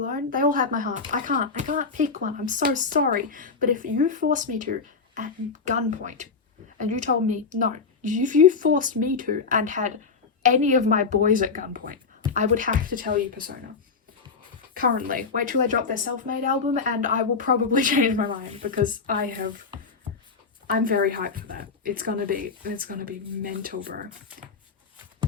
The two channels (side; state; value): right; quieter; 4.9 dB